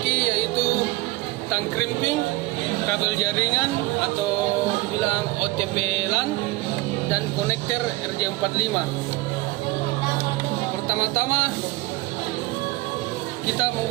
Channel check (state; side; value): quieter; left; 19.5 dB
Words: yaitu tang crimping, kabel jaringan atau dibilang OTP LAN, dan konektor RJ45. Pertama-tama kita